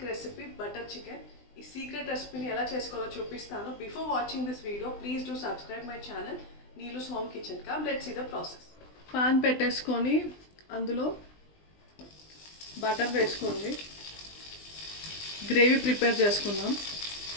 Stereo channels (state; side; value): late; right; 20 ms